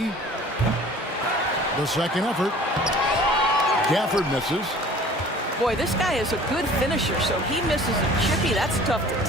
The second effort. Gafford misses. Boy, this guy is a good finisher, so he misses a chippy. That's tough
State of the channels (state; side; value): normal; both; correlation 0.48